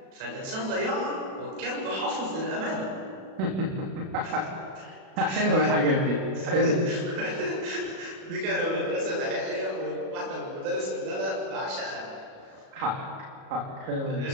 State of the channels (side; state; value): left; late; 37 ms